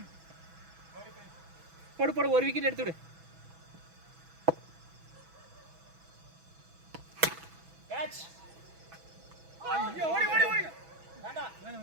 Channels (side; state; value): left; late; 6.1 ms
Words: போடு ஒரு விக்கெட் எடுத்து விடு. கேட்ச். ஐயோ ஓடி வேண்டாம்.